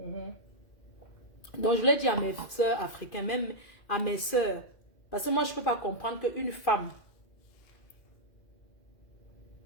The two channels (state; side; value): late; right; 2.2 ms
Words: je voulais dire à mes soeurs africaines, même à mes soeurs, parce que moi, je ne peux pas comprendre qu'une femme,